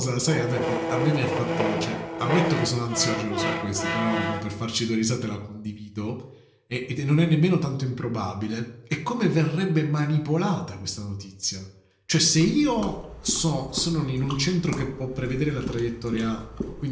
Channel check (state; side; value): identical; both; correlation 1.00